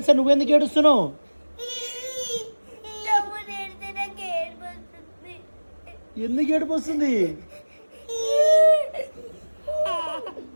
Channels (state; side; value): inverted; both; correlation -1.00